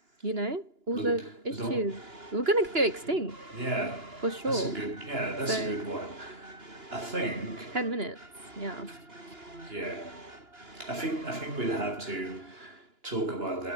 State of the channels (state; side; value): late; left; 2.9 ms